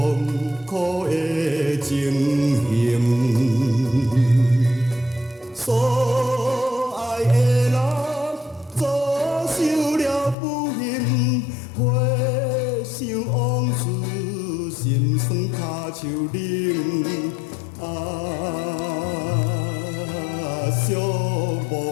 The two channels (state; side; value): drops out; right; at 10.4 s